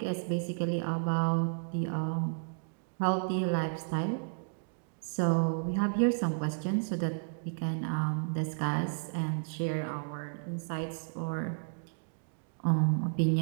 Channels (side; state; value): left; silent; digital silence